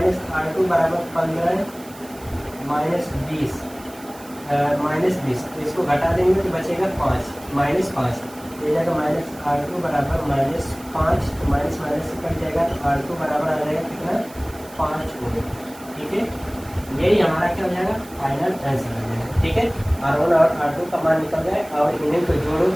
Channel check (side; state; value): right; noise; hiss, 20 dB below the sound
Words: R2 बराबर 15 माइनस 20, तो इसको घटा देंगे तो बचेगा 5 माइनस 5, हो जाएगा माइनस R2 बराबर माइनस 5, तो माइनस माइनस से कट जाएगा तो R2 बराबर आ जाएगा कितना 5 ओम, ठीक है। यही हमारा क्या हो जाएगा फाइनल आंसर आ जाएगा, ठीक है। R1 और R2 का मान निकल जाए और इन्हें को जोड़ो